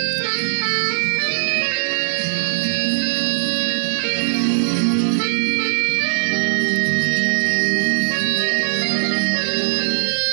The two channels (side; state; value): left; silent; digital silence